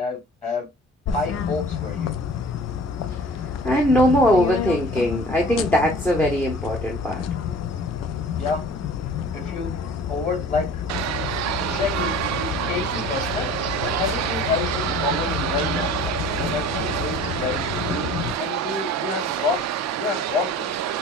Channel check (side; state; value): both; normal; correlation 0.44